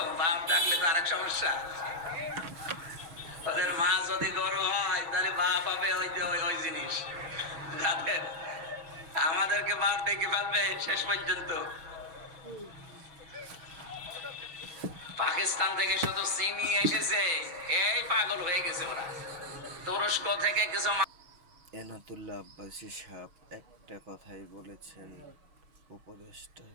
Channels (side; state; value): left; late; 6.2 ms